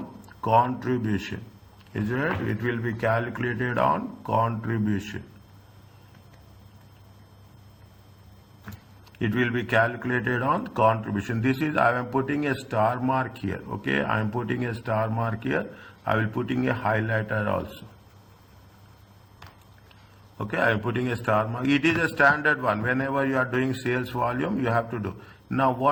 contribution, is it right? It will be calculated on contribution. It will be calculated on contribution. This is, I am putting a star mark here, okay, I am putting a star mark here, I will putting a highlighter also. Okay, I am putting a star mark. It is a standard one. Whenever you are doing sales volume, you have to do. Now,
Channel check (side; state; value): both; identical; correlation 1.00